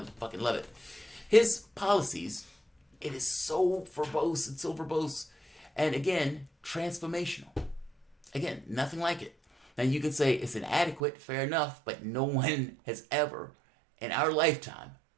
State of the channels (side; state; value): left; drops out; at 11.0 s